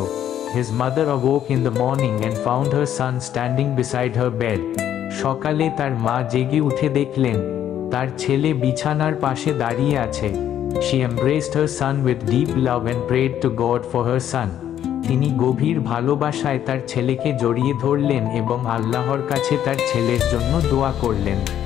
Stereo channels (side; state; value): right; quieter; 10.6 dB